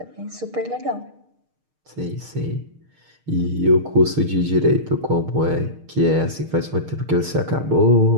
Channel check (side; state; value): left; late; 6.5 ms